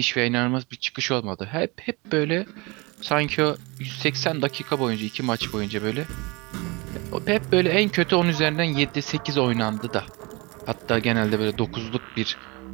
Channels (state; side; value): quieter; left; 26.2 dB